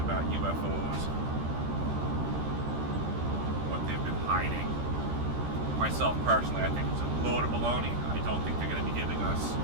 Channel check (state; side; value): late; left; 13 ms